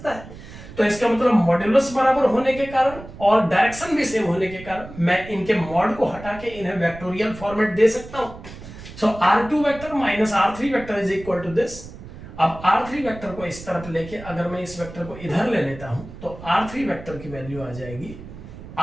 है। तो इसका मतलब मॉड्यूलस बराबर होने के कारण और डायरेक्शन भी सेम होने के कारण मैं इनके मॉड को हटा के इन्हें वेक्टोरियल फॉर्मेट दे सकता हूं। So R2 vector minus R3 vector is equal to this. अब R3 वेक्टर को इस तरफ लेके अगर मैं इस वेक्टर को इधर ले लेता हूं तो R3 वेक्टर की वैल्यू आ जाएगी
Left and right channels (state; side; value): noise; right; rumble, 15 dB below the sound